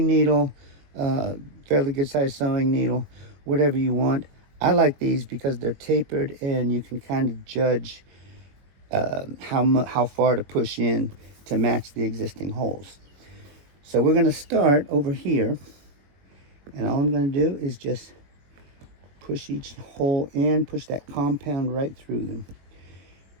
needle, fairly good sized sewing needle, whatever you want. I like these because they're tapered and you can kind of judge how far to push in to match the existing holes. So we're going to start over here, and all I'm going to do is just push each hole in, push that compound right through them.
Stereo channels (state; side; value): late; left; 21 ms